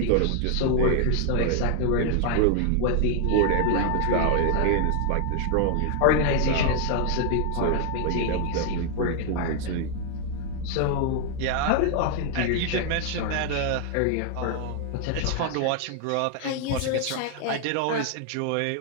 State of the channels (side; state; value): both; different; correlation 0.00